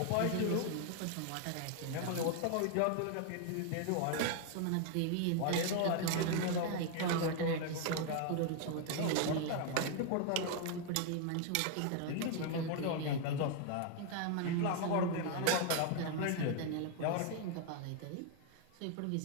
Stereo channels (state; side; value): different; both; correlation 0.00